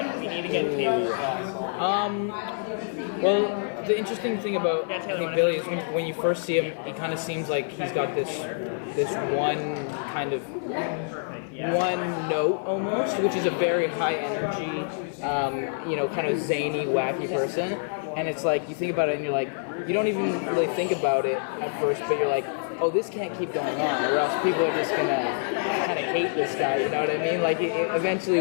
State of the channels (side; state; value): right; silent; 59 dB below the other